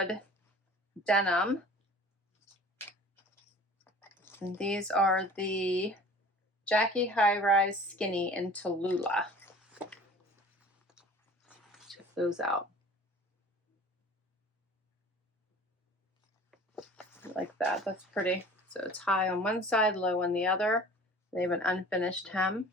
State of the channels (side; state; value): both; normal; correlation 0.45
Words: denim. And these are the Jackie High Rise Skinny in Tallulah. Check those out. I like that. That's pretty. So it's high on one side, low on the other. They have an unfinished hem.